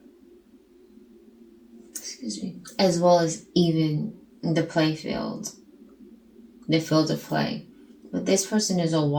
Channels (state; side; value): identical; both; correlation 1.00